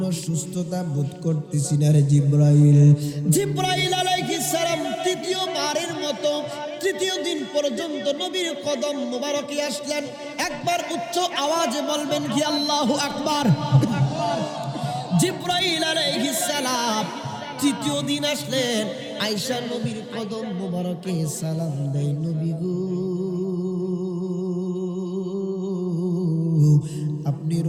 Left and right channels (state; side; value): identical; both; correlation 1.00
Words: সুস্থতা বোধ করতেছি না রে জিবরাইল। জিবরাইল আলাইহিস সালাম তৃতীয়বারের মতো তৃতীয় দিন পর্যন্ত নবীর কদম মোবারকে আসলেন। একবার উচ্চ আওয়াজে বলবেন কি আল্লাহু আকবার। জিবরাইল আলাইহিস সালাম তৃতীয় দিন আসলেন, আয়েশা নবীর কদম মোবারকে সালাম দেয়, নবী গো, আপনি